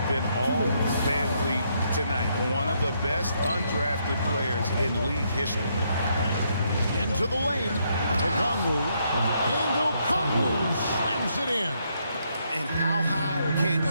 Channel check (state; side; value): inverted; both; correlation -0.75